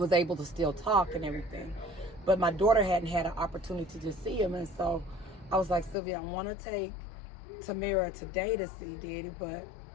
able to still talk and everything. But my daughter hadn't had an opportunity to see him. And so I was like, Sylvia, I want to take Tamira today to see Daddy, but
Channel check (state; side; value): drops out; right; at 6.0 s